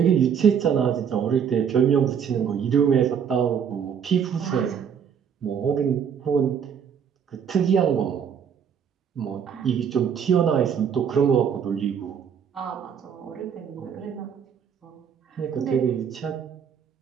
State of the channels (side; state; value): left; quieter; 7.6 dB